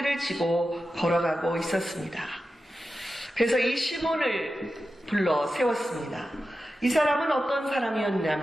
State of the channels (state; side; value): normal; both; correlation 0.92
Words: 지고 걸어가고 있었습니다. 그래서 이 시몬을 불러 세웠습니다. 이 사람은 어떤